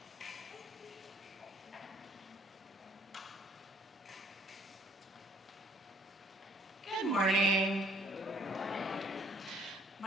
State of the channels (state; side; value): normal; both; correlation 0.61